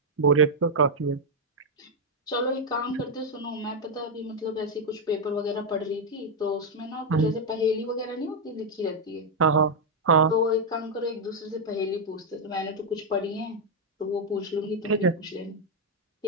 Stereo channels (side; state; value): both; normal; correlation 0.00